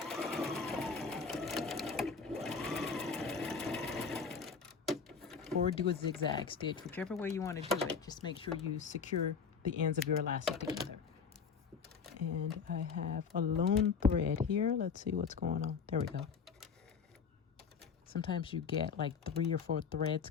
Or do a zigzag stitch, whichever way you want to do it. Just make sure you secure the ends of your elastic together. And I have a lone thread here. Let's see what's going on. There we go. Sometimes you get like 3 or 4 threads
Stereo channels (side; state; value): right; quieter; 5.8 dB